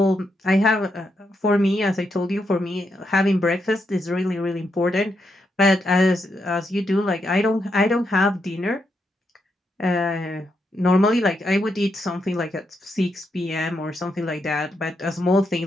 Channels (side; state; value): both; normal; correlation 0.81